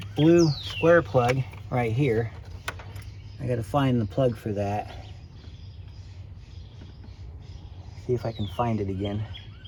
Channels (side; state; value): both; identical; correlation 1.00